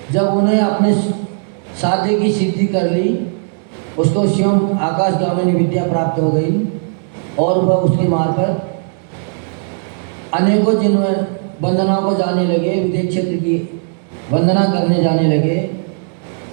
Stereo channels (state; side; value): silent; left; 67 dB below the other